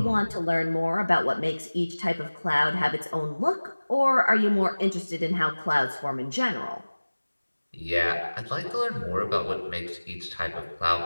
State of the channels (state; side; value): inverted; both; correlation -1.00